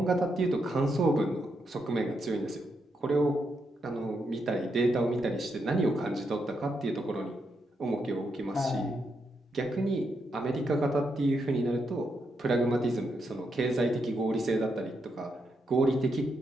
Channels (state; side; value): normal; both; correlation 0.81